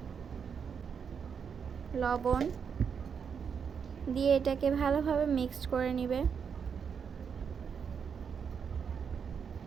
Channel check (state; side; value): quieter; left; 6.7 dB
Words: লবণ দিয়ে এটাকে ভালোভাবে মিক্সড করে নেবে।